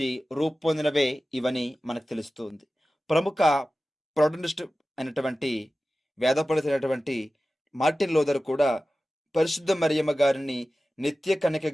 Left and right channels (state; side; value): normal; both; correlation 0.95